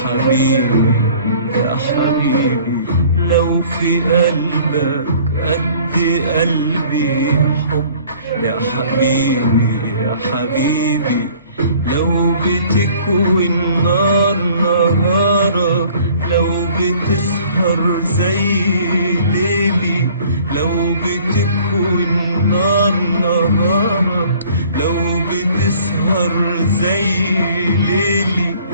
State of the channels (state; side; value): inverted; both; correlation -0.53